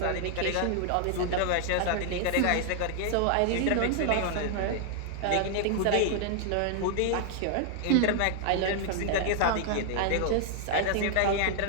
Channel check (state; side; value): different; both; correlation 0.00